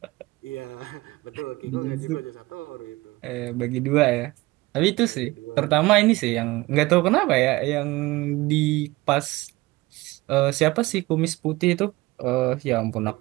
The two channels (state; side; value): quieter; left; 20.6 dB